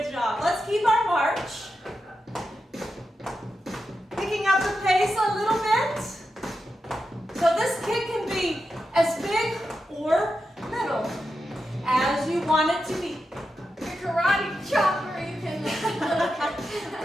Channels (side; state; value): both; normal; correlation 0.89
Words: job. Let's keep our march. Picking up the pace a little bit. So this kick can be as big or little as you want it to be. Your karate chopper, you can